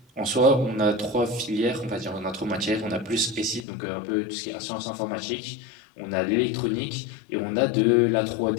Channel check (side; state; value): right; drops out; at 3.7 s